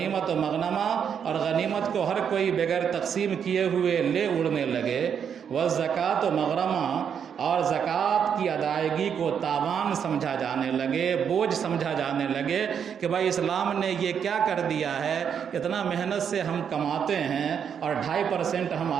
مغنما، اور غنیمت کو ہر کوئی بغیر تقسیم کیے ہوئے لے اڑنے لگے، والزکوٰۃ مغرما، اور زکوٰۃ کی ادائیگی کو تاوان سمجھا جانے لگے، بوجھ سمجھا جانے لگے کہ بھائی اسلام نے یہ کیا کر دیا ہے، اتنا محنت سے ہم کماتے ہیں اور 2.5% ہم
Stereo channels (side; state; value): left; quieter; 7.7 dB